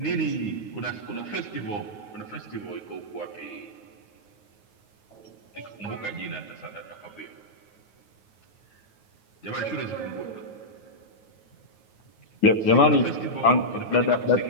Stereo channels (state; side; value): late; right; 9.4 ms